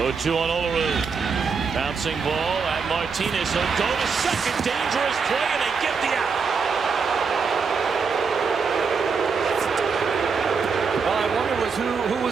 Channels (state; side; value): quieter; left; 5.4 dB